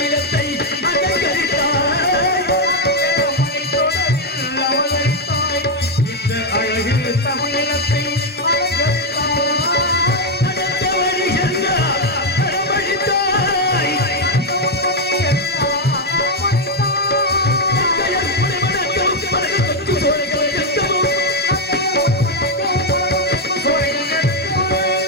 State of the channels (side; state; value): both; normal; correlation 0.03